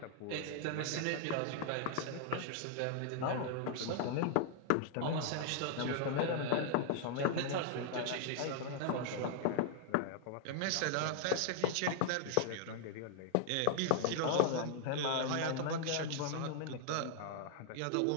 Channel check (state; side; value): different; both; correlation 0.00